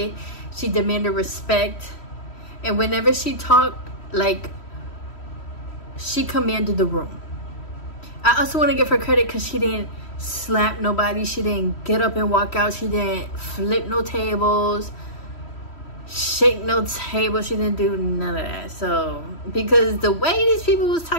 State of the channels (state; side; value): late; right; 3.1 ms